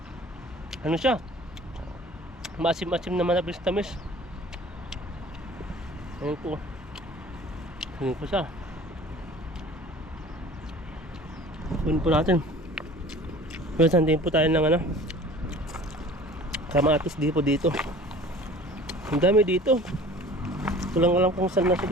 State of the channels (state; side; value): normal; both; correlation 0.45